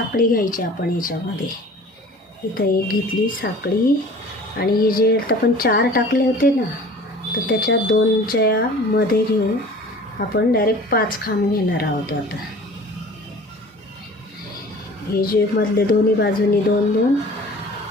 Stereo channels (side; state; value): both; normal; correlation 0.45